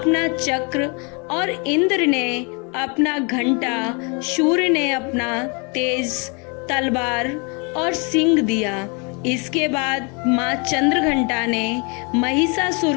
चक्र और इंद्र ने अपना घंटा, सूर्य ने अपना तेज तलवार और सिंह दिया। इसके बाद माँ चंद्रघंटा ने महिषासुर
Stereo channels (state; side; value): quieter; right; 33.3 dB